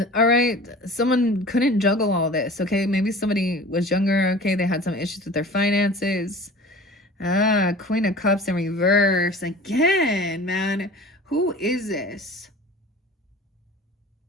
All right, someone couldn't juggle all this, okay? Maybe somebody was younger, okay? They had some issues with their finances. Queen of Cups in reverse. Again, man. Who is this?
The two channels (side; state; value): both; normal; correlation 0.41